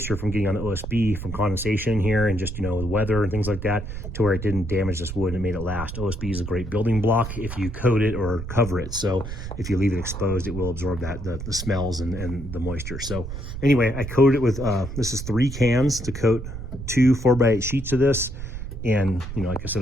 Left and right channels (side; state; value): right; noise; rumble, 8 dB below the sound